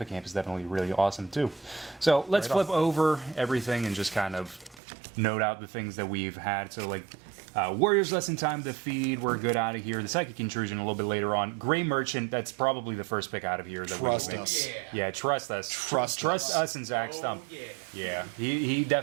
is definitely really awesome too. So let's flip over everything and just kind of note out the things that we've had. So like Warriors Lesson Time to Feed, we're good out of here. The Psychic Intrusion a little bit later on. Gray Merchant, that's probably the first pick out of here. That Trust we us. Yeah, trust us. Trust us and Zach Stump. Yeah, he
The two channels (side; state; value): left; drops out; at 4.8 s